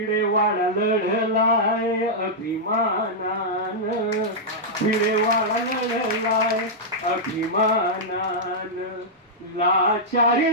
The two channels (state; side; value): normal; both; correlation -0.08